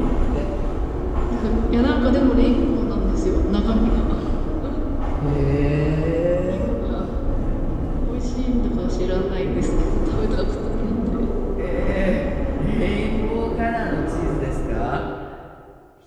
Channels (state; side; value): identical; both; correlation 1.00